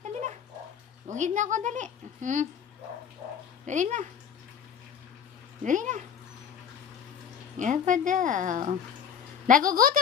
Dali na. Ugid na ako, dali. Dali na. Dali na. Yan pa daw.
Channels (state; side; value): quieter; right; 7.9 dB